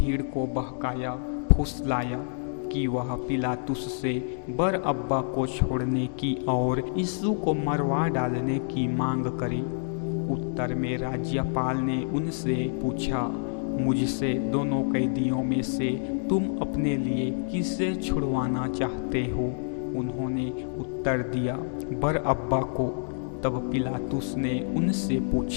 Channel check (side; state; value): right; silent; digital silence